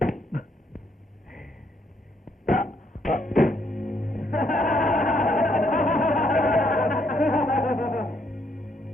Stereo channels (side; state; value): both; normal; correlation 0.72